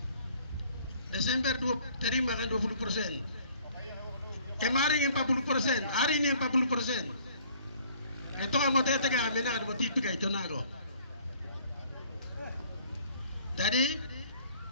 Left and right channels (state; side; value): inverted; both; correlation -0.57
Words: Desember terima kan 20%. Kemarin 40%, hari ini 40%. Itu kamu tetap menado mau dipikir itu nago. Jadi,